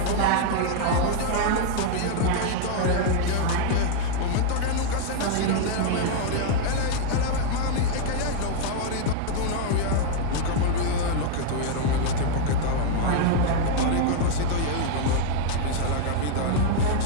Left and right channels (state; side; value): different; both; correlation 0.00